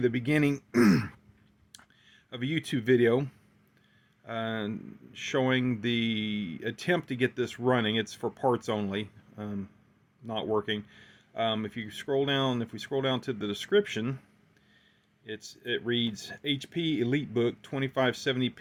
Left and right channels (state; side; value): identical; both; correlation 1.00